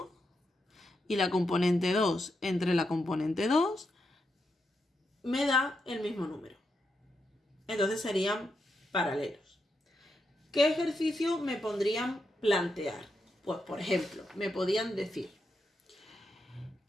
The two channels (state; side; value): normal; both; correlation 0.84